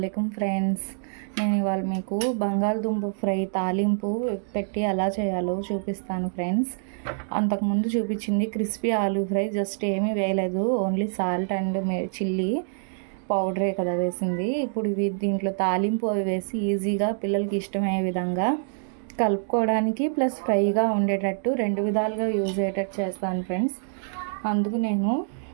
ఫ్రెండ్స్. నేను ఇవాళ మీకు బంగాళదుంప ఫ్రై తాలింపు పెట్టి ఎలా చేయాలో చూపిస్తాను ఫ్రెండ్స్. అంతకుముందు చూపించింది క్రిస్పీ ఆలూ ఫ్రై, జస్ట్ ఏమీ వేయలేదు, ఓన్లీ సాల్ట్ అండ్ చిల్లీ పౌడరే కదా వేసింది. ఇప్పుడు ఇవి దీంట్లో తాలింపు అవి వేసి ఈజీగా పిల్లలకి ఇష్టమయ్యే విధంగా కలుపుకోవడానికి ప్లస్ ఫ్రైగా ఉండేటట్టు రెండు విధాలుగా యూజ్ అయ్యేటట్టు చేస్తాను ఫ్రెండ్స్. అందుకు నేను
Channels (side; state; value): left; silent; digital silence